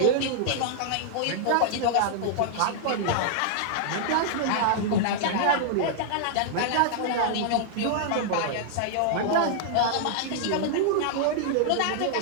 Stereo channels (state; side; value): different; both; correlation -0.01